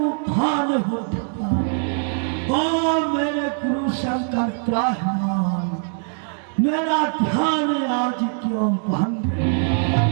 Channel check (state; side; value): silent; left; 57 dB below the other